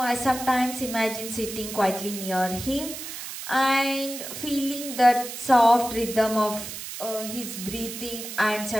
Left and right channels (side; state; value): right; noise; hiss, 9 dB below the sound